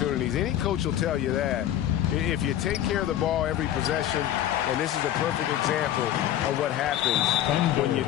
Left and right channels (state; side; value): quieter; right; 11.8 dB